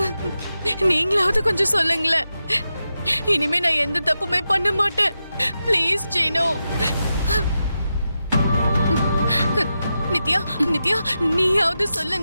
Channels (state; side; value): inverted; both; correlation -0.89